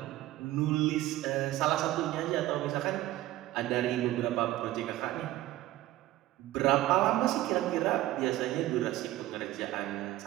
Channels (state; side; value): quieter; left; 15.5 dB